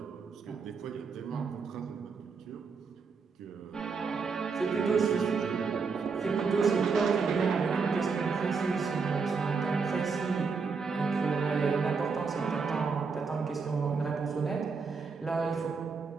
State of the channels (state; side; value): quieter; left; 5.1 dB